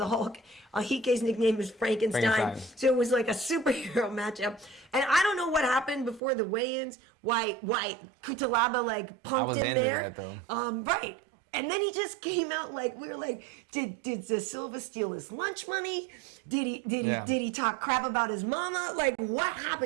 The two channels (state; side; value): drops out; left; at 6.2 s